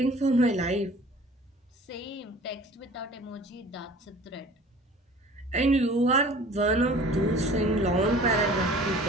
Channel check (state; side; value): normal; both; correlation 0.46